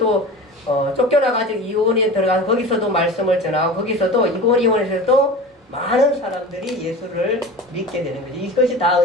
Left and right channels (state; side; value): normal; both; correlation 0.34